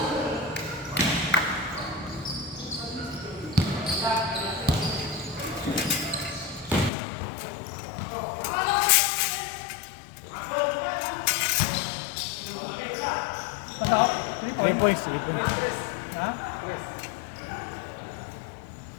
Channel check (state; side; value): drops out; right; at 6.9 s